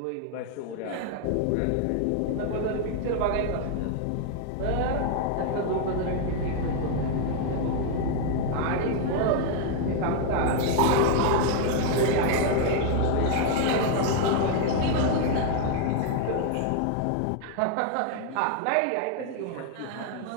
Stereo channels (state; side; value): different; both; correlation 0.00